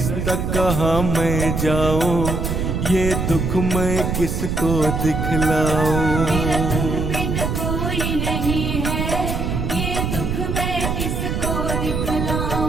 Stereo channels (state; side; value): noise; right; rumble, 1 dB below the sound